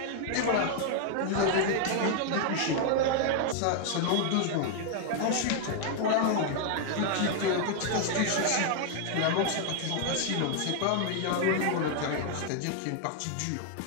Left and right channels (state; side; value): different; both; correlation 0.00